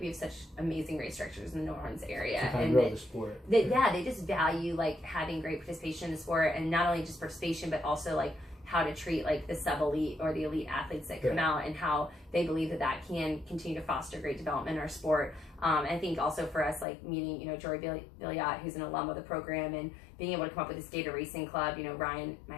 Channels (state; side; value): drops out; right; at 16.9 s